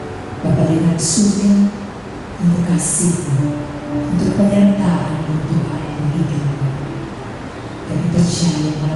Bapa dengan surga untuk kasih-Mu, untuk penyertaan Tuhan bagi kami. Kami percaya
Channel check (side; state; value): both; identical; correlation 1.00